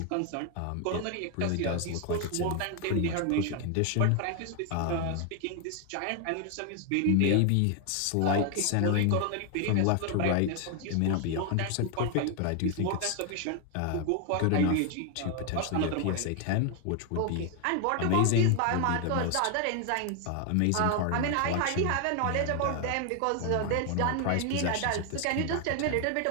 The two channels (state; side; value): different; both; correlation 0.00